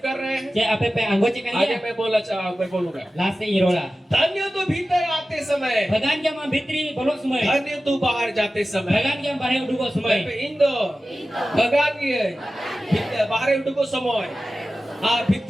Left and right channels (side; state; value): both; normal; correlation 0.95